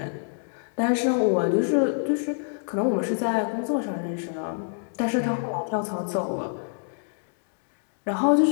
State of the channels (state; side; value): silent; right; digital silence